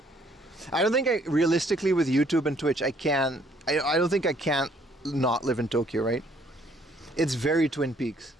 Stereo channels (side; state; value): both; normal; correlation 0.64